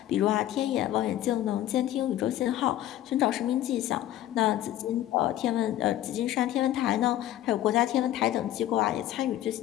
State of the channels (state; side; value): quieter; right; 13.1 dB